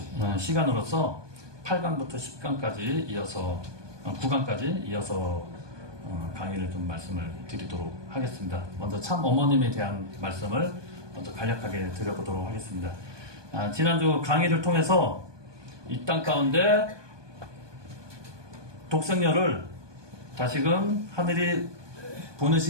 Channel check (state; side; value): late; left; 1.2 ms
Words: 시간으로서 8강부터 10강까지 이어서 9강까지 이어서 강의를 좀 말씀을 드리도록 하겠습니다. 먼저 참 어머님에 대한 말씀을 먼저 간략하게 드려보도록 하겠습니다. 지난주 강의를 통해서 이 땅 가운데 독생녀를 다시금 하늘이